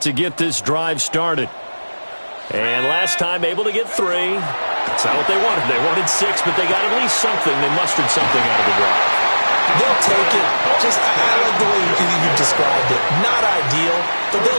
to get this drive started. And last time able to get 3. That's not what they wanted. They wanted 6, but they got at least something. They mustered something out of the drive. They'll take it. I like the way you described it. Not ideal, but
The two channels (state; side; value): inverted; both; correlation -1.00